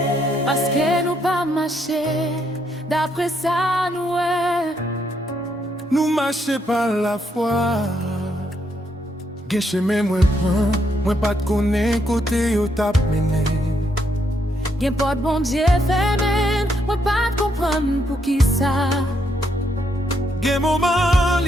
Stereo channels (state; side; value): normal; both; correlation 0.75